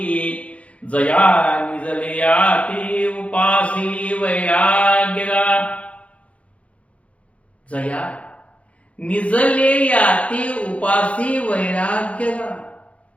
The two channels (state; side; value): late; right; 0.064 ms